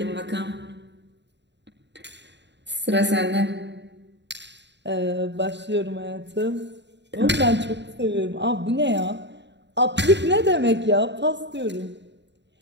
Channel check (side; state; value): left; late; 0.52 ms